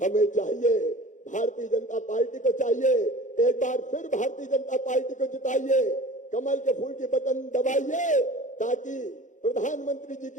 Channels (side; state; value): right; late; 0.36 ms